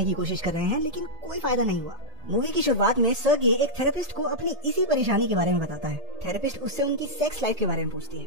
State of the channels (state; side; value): late; left; 1.8 ms